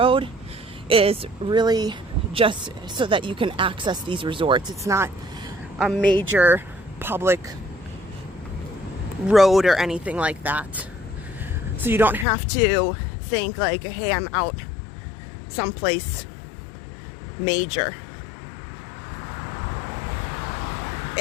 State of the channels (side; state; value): right; drops out; at 12.2 s